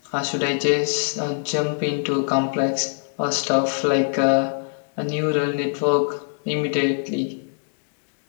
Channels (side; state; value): right; silent; digital silence